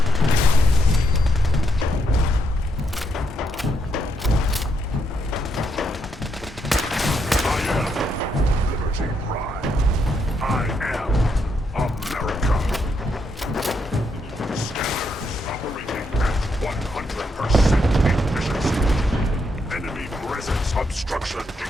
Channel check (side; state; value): both; normal; correlation 0.78